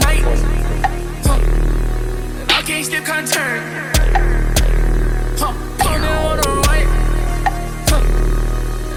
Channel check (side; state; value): both; identical; correlation 1.00